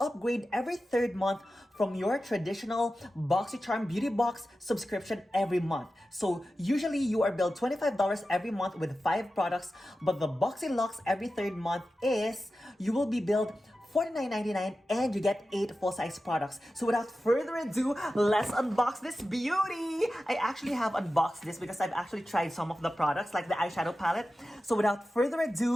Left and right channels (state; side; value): normal; both; correlation 0.93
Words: every third month from your traditional Boxycharm Beauty Box subscription every month. So usually you are billed $25 every month with 5 products, but the Boxylux every third month is you will be billed $49.99 and you get 8 full-size products. So without further ado, let's unbox this beauty. I actually have unboxed this because I've actually tried some of the products like the eyeshadow palette. So without further